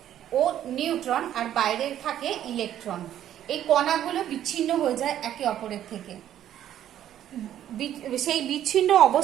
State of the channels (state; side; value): quieter; left; 11.3 dB